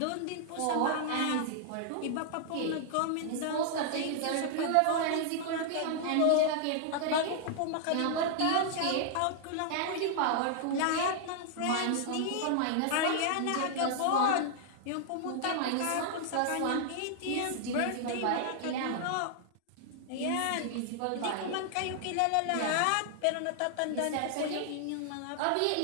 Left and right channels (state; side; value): different; both; correlation -0.01